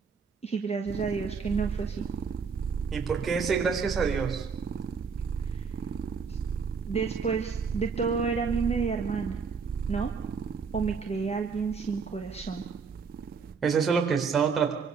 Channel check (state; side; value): quieter; left; 5.6 dB